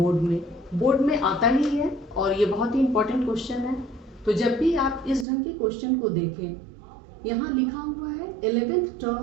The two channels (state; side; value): drops out; left; at 5.2 s